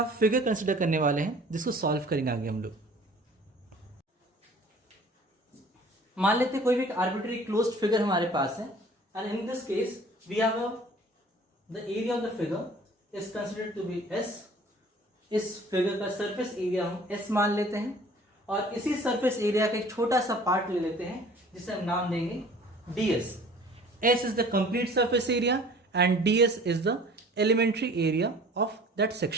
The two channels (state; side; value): normal; both; correlation 0.49